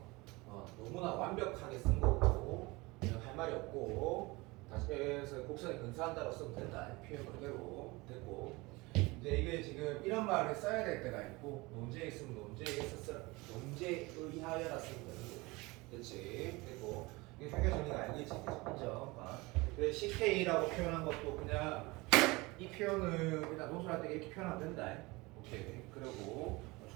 너무나 완벽하게 쓴 거고 그냥 할 말이 없고, 다시 해서 곡선에 근사한다고 쓰면 된다. 표현 그대로 됐고, 이제 이게 지금 이런 말을 써야 될 때가 있고, 논제에 있으면 논제에 의하여라 쓰면 되는 거고. 그렇지. 그리고 이게 상계 정리가 알겠지, 인정. 그래 CK라고 표현한 것도 그냥 이 표현을 그냥 논술할 때 이렇게 표현하면 된다. 오케이. 그리고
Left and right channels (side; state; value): left; quieter; 23.4 dB